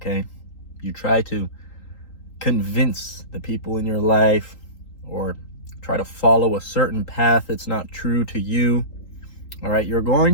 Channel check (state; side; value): late; right; 3.8 ms